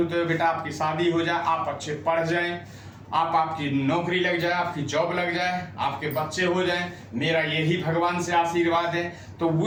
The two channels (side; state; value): both; identical; correlation 1.00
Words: है बेटा, आपकी शादी हो जाए, आप अच्छे पढ़ जाएं, आपकी नौकरी लग जाए, आपकी जॉब लग जाए, आपके बच्चे हो जाएं, मेरा यही भगवान से आशीर्वाद है। तो